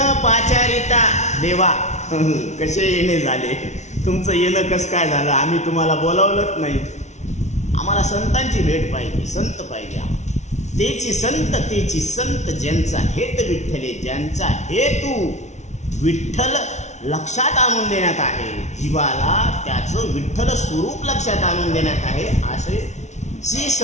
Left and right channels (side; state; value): right; late; 0.33 ms